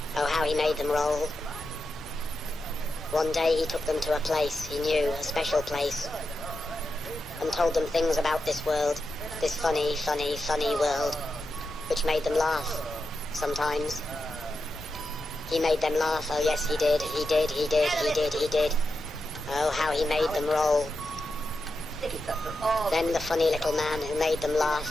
Oh how he made them roll. One day he took them to a place he knew, a special place, and told them things about this world, this funny, funny, funny world, which made them laugh, sometimes. He made them laugh, oh yes he did, he did, he did, he did, he did. Oh how he made them roll. Then the funny little man who made them laugh,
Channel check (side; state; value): both; normal; correlation 0.88